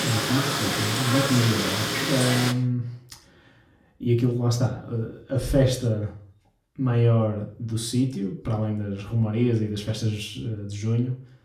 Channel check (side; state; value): both; identical; correlation 1.00